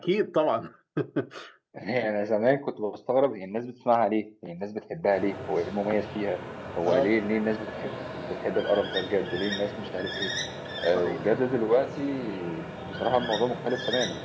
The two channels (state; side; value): identical; both; correlation 1.00